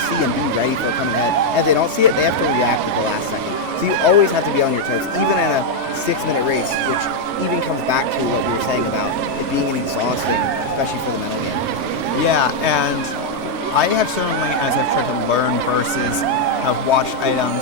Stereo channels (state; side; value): late; left; 3.2 ms